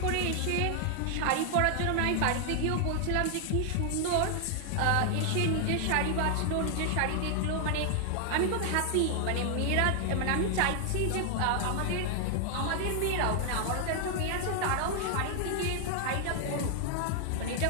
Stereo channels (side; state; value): both; different; correlation 0.00